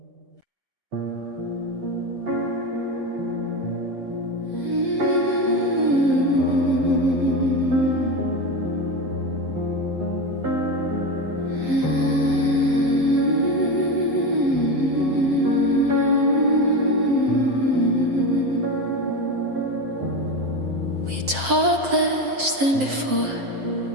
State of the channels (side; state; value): left; late; 7.5 ms